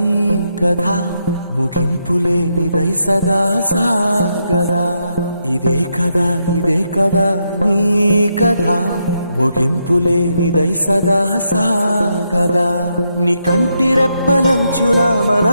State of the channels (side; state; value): both; inverted; correlation -0.81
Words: కథ, ముగింపులేనిదై సదా సాగదా. ఇదే కదా నీ కథ, ముగింపులేనిదై సదా సాగదా. నీ కంటి రెప్పలంచున